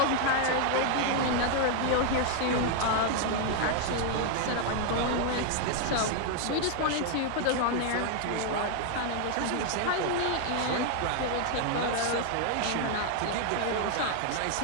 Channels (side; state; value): both; different; correlation 0.00